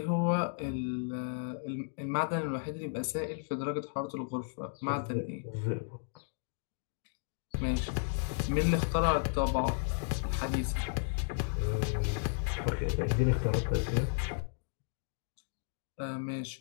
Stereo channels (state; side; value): silent; right; digital silence